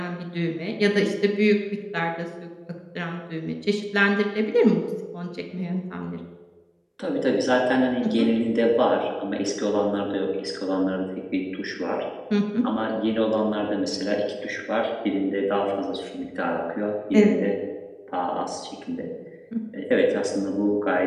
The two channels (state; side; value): identical; both; correlation 1.00